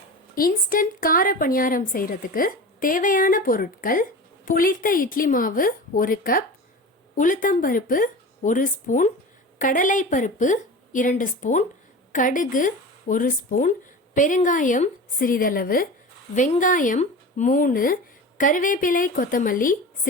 இன்ஸ்டன்ட் கார பணியாரம் செய்கிறதுக்கு தேவையான பொருட்கள்: புளித்த இட்லி மாவு 1 கப், உளுத்தம்பருப்பு 1 ஸ்பூன், கடலை பருப்பு 2 ஸ்பூன், கடுகு 1 ஸ்பூன், பெருங்காயம் சிறிதளவு, வெங்காயம் 3, கருவேப்பிலை கொத்தமல்லி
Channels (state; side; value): normal; both; correlation 0.32